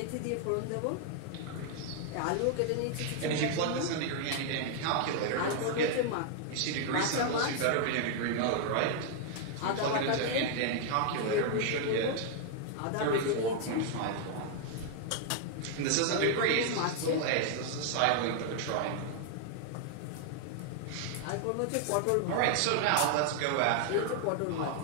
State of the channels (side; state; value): both; different; correlation 0.00